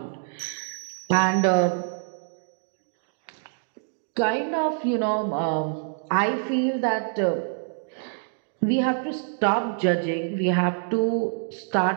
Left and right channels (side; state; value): left; silent; digital silence